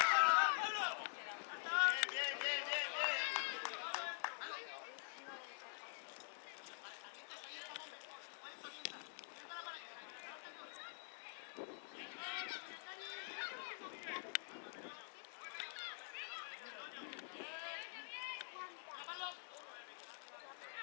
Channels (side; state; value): right; silent; digital silence